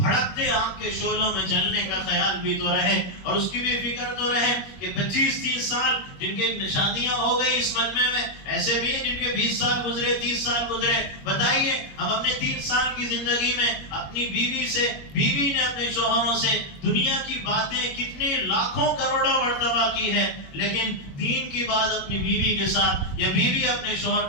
آگ کے شعلوں میں جلنے کا خیال بھی تو رہے، اور اس کی بھی فکر تو رہے کہ 25-30 سال جن کے شادیاں ہو گئی اس مجمع میں، ایسے بھی ہیں جن کے 20 سال گزرے، 30 سال گزرے۔ بتائیے ہم اپنے 30 سال کی زندگی میں اپنی بیوی نے اپنے شوہروں سے دنیا کی باتیں کتنے لاکھوں کروڑوں مرتبہ کی ہے، لیکن دین کی بات اپنی بیوی کے ساتھ یا بیوی اپنے شوہر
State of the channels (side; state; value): right; late; 21 ms